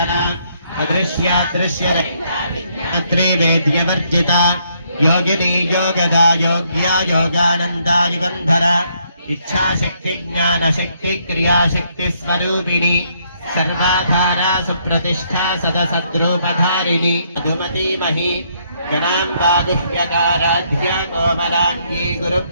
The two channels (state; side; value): inverted; both; correlation -0.71